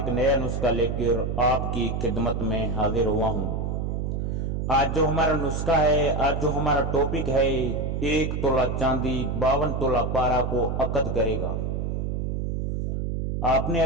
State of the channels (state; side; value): noise; right; hum, 1 dB below the sound